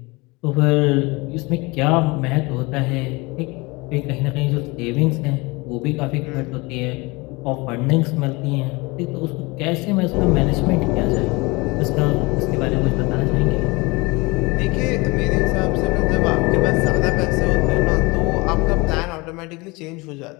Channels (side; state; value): right; quieter; 25.0 dB